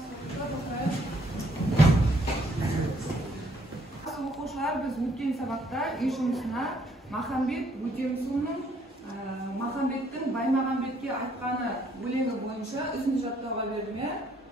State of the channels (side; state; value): both; normal; correlation 0.67